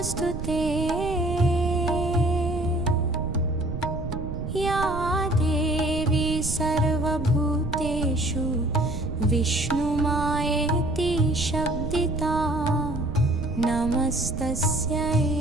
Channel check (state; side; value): noise; right; rumble, 6 dB below the sound